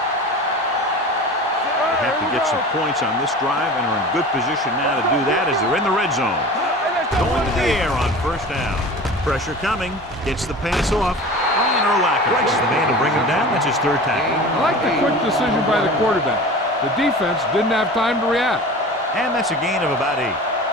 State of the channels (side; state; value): both; normal; correlation 0.37